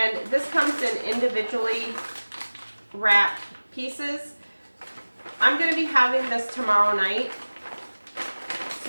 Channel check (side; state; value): both; inverted; correlation -1.00